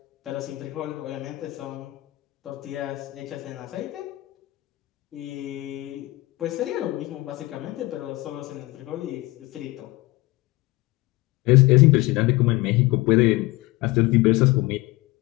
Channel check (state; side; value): quieter; right; 20.6 dB